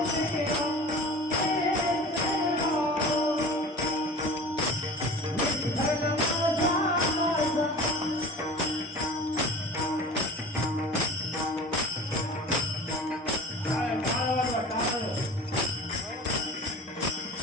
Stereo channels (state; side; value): normal; both; correlation 0.38